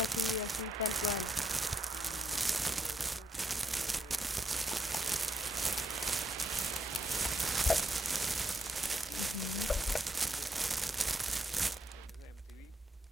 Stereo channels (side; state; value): both; normal; correlation 0.79